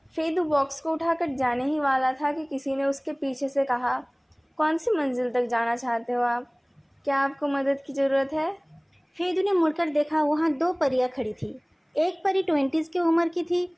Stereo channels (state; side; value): identical; both; correlation 1.00